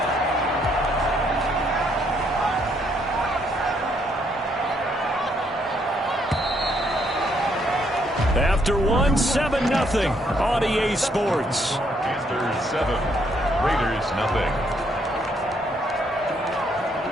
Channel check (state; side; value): normal; both; correlation 0.71